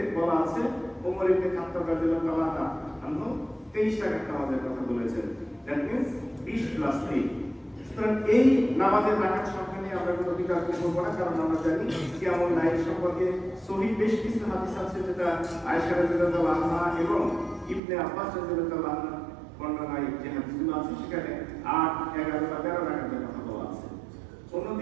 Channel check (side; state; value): left; drops out; at 17.8 s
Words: বলা আছে ওমর ইবনে খাত্তাব রাদিয়াল্লাহু আনহু 23 রাকাত নামাজের কথা বলেছেন। That means 20 + 3। সুতরাং এই নামাজের রাকাত সংখ্যা নিয়ে আমরা কোনো বিতর্ক করব না, কারণ আমরা জানি কিয়ামুল লাইল সম্পর্কে সহিহ বেশ কিছু হাদিস আছে, যেটা আয়েশা রাদিয়াল্লাহু আনহা এবং ইবনে আব্বাস রাদিয়াল্লাহু আনহু বর্ণনায় যে হাদিসগুলো আছে সেখানে 8, 11 বা 13 রাকাতের কথা বলা আছে।